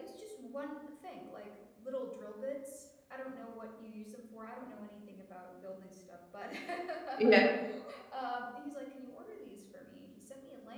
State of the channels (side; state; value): both; identical; correlation 1.00